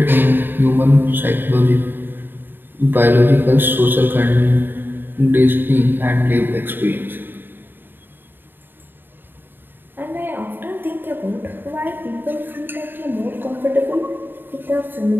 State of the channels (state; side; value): late; left; 0.096 ms